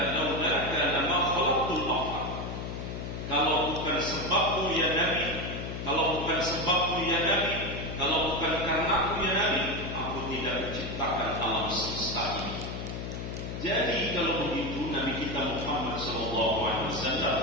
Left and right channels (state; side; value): noise; left; hum, 6 dB below the sound